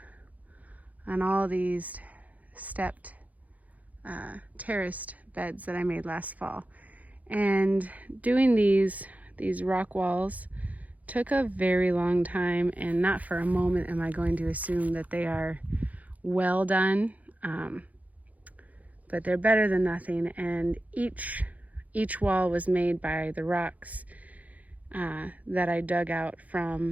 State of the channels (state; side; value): late; left; 0.075 ms